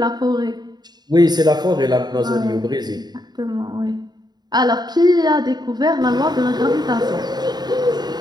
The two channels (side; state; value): left; late; 0.20 ms